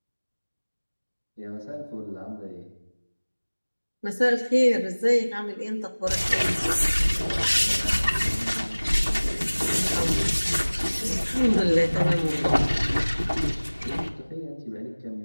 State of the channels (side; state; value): both; inverted; correlation -1.00